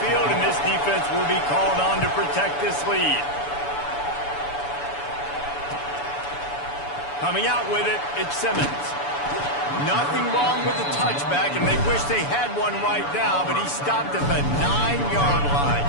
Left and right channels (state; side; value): late; right; 7.0 ms